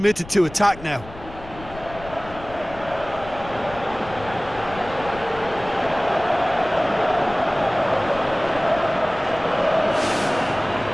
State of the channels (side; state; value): left; noise; rumble, 16 dB below the sound